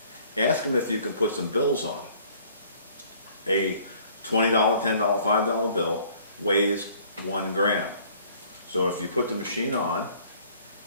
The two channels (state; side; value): inverted; both; correlation -0.56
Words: Ask them if you can put some bills on it. A $20, $10, $5 bill weighs 1 gram. So if you put the machine on